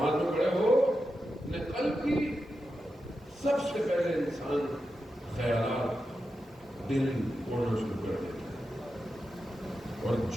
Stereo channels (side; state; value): both; normal; correlation 0.89